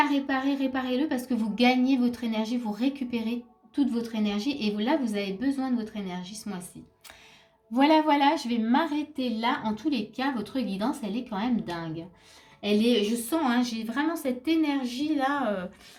réparer, réparez-le parce que vous gagnez votre énergie, vous récupérez toute votre énergie et là, vous avez besoin de votre énergie ce mois-ci. Voilà, voilà, je vais m'arrêter là. En tous les cas, votre guidance, elle est quand même dingue. Elle est, je sens, hein, j'ai vraiment cette énergie-là.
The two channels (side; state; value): both; identical; correlation 1.00